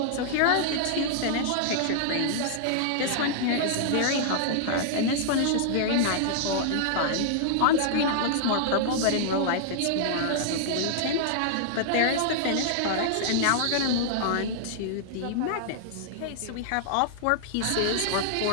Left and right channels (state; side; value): different; both; correlation -0.01